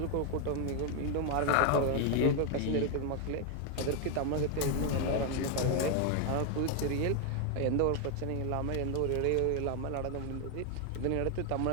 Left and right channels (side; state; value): both; different; correlation 0.01